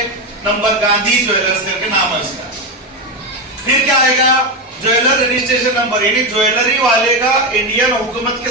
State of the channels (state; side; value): normal; both; correlation 0.12